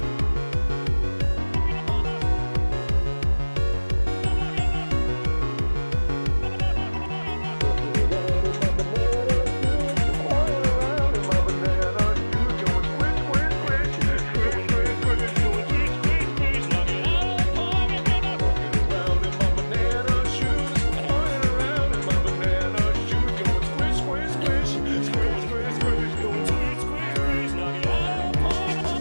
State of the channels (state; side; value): inverted; both; correlation -1.00